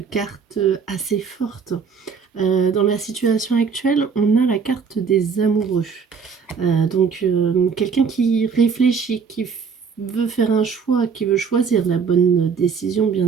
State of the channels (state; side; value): quieter; left; 5.9 dB